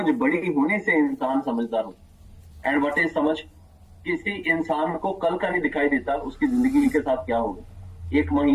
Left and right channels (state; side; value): identical; both; correlation 1.00